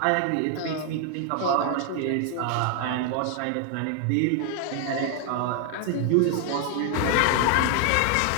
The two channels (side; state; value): both; different; correlation 0.00